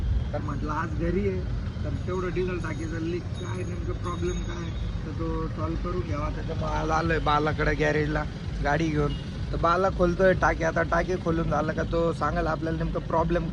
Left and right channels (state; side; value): identical; both; correlation 1.00